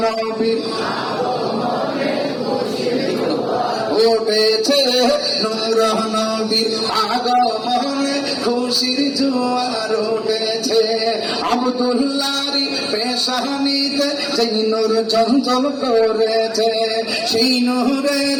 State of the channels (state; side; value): identical; both; correlation 1.00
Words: নবীর উঠেছে নূর নবীর আগমনে, খুশির জোয়ার উঠেছে। আব্দুল্লাহর পেশানিতে যেই নূর চঞ্চল করেছে, সেই